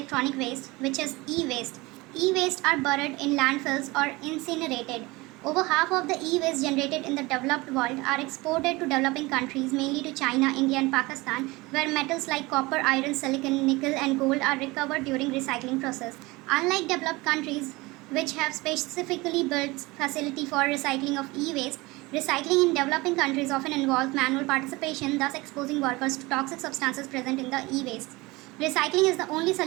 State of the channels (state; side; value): quieter; left; 22.6 dB